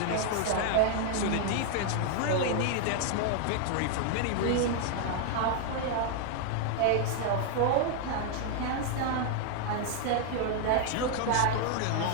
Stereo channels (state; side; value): different; both; correlation 0.00